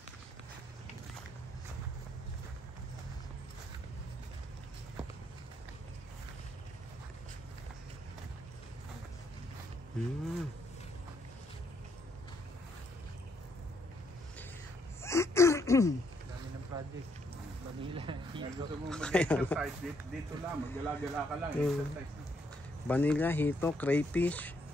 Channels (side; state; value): both; normal; correlation 0.73